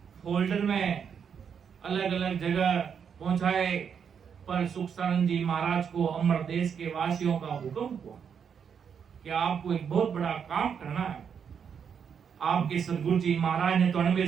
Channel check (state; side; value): quieter; left; 7.2 dB